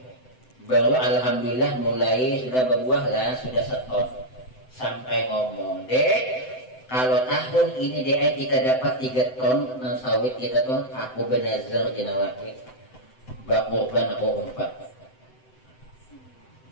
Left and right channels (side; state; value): right; late; 7.9 ms